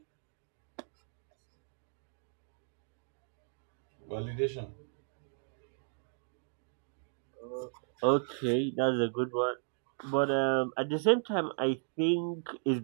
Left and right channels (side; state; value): left; silent; digital silence